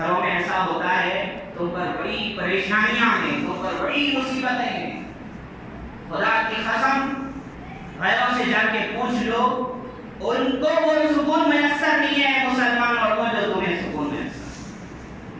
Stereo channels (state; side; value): identical; both; correlation 1.00